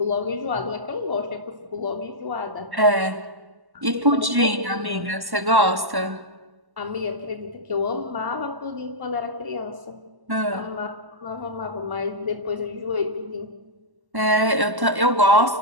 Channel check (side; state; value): left; late; 1.1 ms